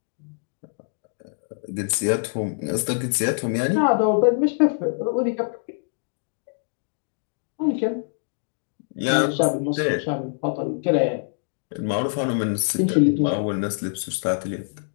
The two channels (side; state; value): right; silent; digital silence